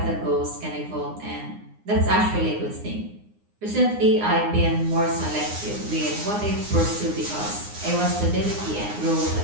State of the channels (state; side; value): late; left; 9.7 ms